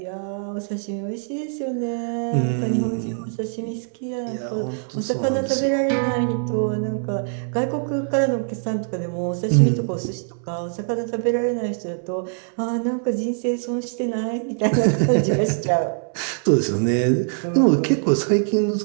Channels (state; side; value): silent; left; 63 dB below the other